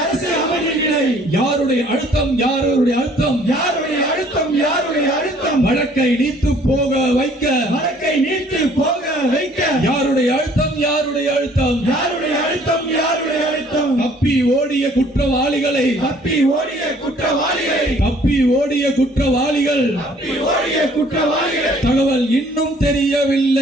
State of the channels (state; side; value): normal; both; correlation 0.58